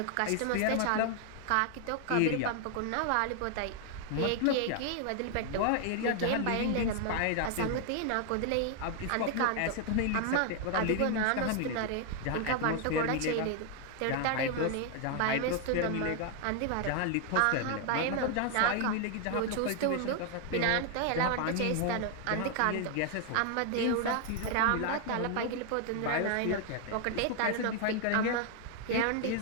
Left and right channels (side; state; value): both; different; correlation 0.00